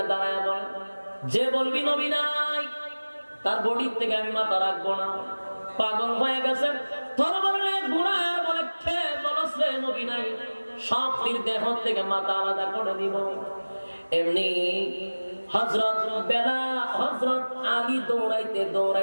দাঁড়ায় বলে, যে বলবি নবী নাই তার বডির থেকে আমি মাথা রাখবো না। পাগল হয়ে গেছে, তরবারি ঘুরায় বলে, খেয়ে বলছে নবী নাই, সব দেহ থেকে মাথা আলাদা করে দিব। এমনি হযরত বেলাল, হযরত আলী দৌড়াইতে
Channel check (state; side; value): inverted; both; correlation -1.00